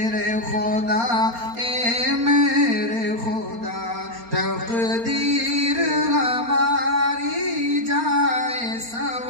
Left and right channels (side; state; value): left; late; 4.3 ms